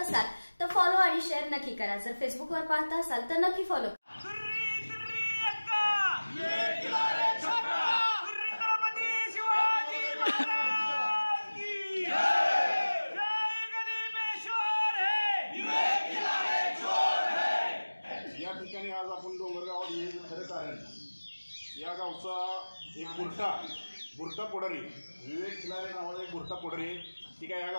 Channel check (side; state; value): both; inverted; correlation -1.00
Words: तर फॉलो आणि शेअर नक्की करा. जर फेसबुकवर पाहत असाल तर नक्की फॉलो करा. या ठिकाणी आज आपण डोंगरगावात येण्याचं खरं कारण या गावचा एक बुरटा पोडरी विवेक खिलारे नावाचा एक बुरटा पोडरी ठीक आहे. या